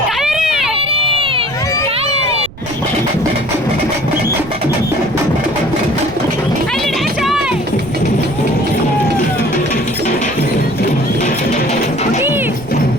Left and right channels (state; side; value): noise; right; rumble, 17 dB below the sound